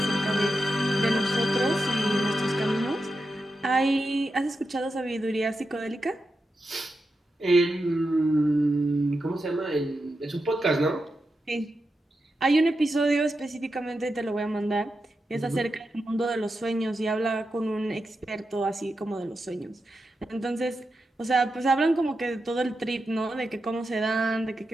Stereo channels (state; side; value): normal; both; correlation 0.89